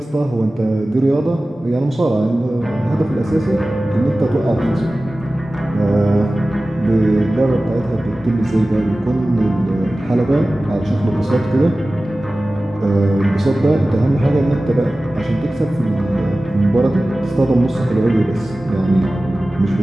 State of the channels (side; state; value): both; normal; correlation 0.96